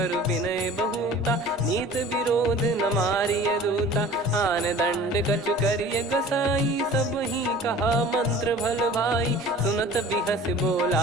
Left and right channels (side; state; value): both; normal; correlation 0.44